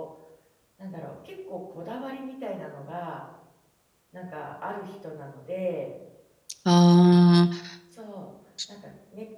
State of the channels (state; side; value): identical; both; correlation 1.00